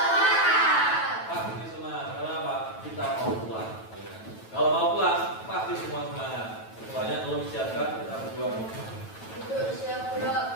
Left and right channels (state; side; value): late; right; 9.1 ms